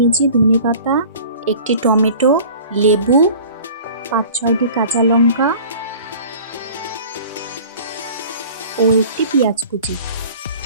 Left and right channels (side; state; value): both; inverted; correlation -0.45